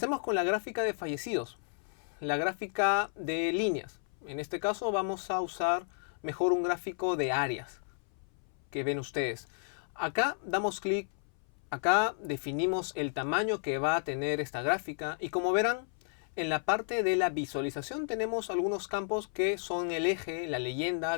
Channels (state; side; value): silent; right; 56 dB below the other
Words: con la gráfica de fallecidos, la gráfica de líneas. En este caso vamos a usar mejor un gráfico de áreas que ven ustedes. Acá damos clic. Acá definimos el tamaño que va a tener esta gráfica y como verán, en la parte de la visualización tenemos algunos campos que son el eje, la leyenda,